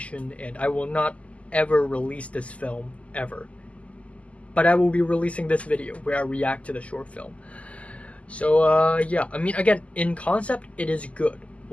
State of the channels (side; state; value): right; late; 0.065 ms